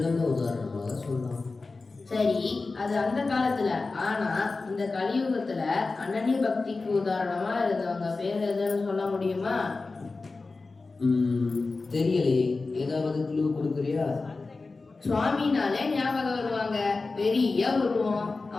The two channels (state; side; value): quieter; right; 3.8 dB